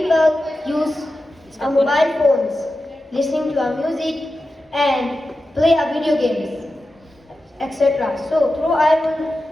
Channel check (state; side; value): normal; both; correlation 0.92